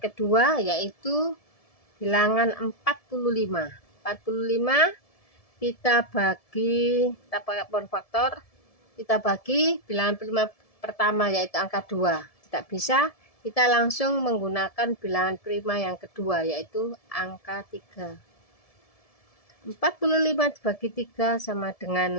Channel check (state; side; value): late; right; 1.7 ms